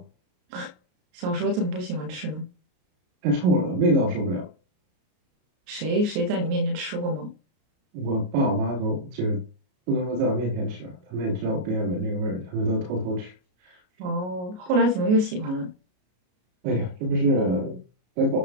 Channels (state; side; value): late; left; 33 ms